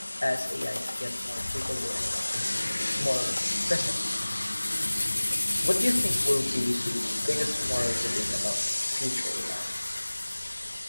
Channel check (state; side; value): inverted; both; correlation -1.00